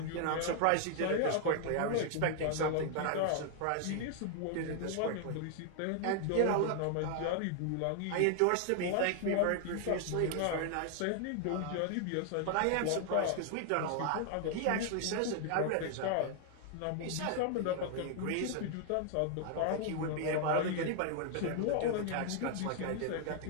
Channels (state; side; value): different; both; correlation 0.00